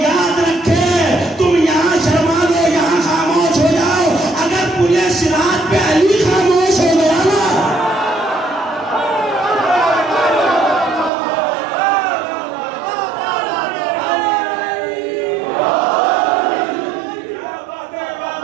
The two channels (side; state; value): left; drops out; at 11.1 s